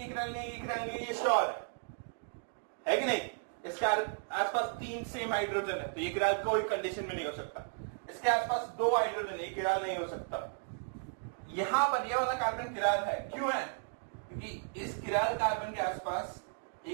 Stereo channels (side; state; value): left; silent; digital silence